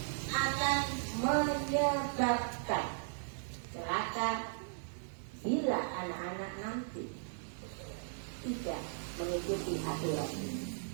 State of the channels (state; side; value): silent; left; digital silence